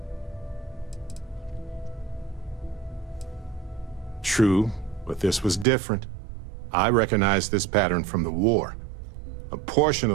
True, but this was different. I recognized this pattern from the war. A portion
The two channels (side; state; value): left; drops out; at 5.7 s